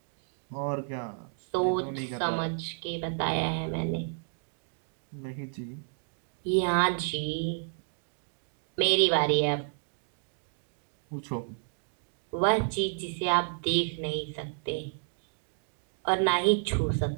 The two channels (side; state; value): left; silent; digital silence